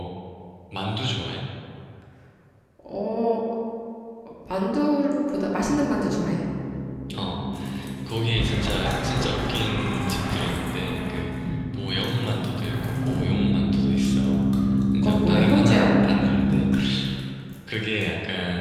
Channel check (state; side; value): identical; both; correlation 1.00